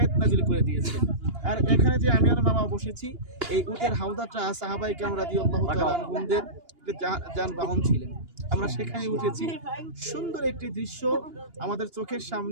নাযিল করে দিয়েছেন। আর এখানে যে আমি আর মামা বসেছি, এই উটের হাউদাটা সাহাবায়ে কেরাম রাদিয়াল্লাহু তাআলা আনহুদের যানবাহন ছিলেন। আমরা সেখানে উঠেছি। সুন্দর একটি দৃশ্য আমাদের চোখের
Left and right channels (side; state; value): left; late; 2.8 ms